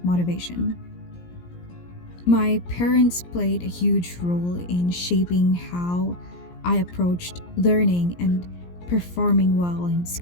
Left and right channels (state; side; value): late; right; 17 ms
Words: motivation. My parents played a huge role in shaping how I approached learning and performing well in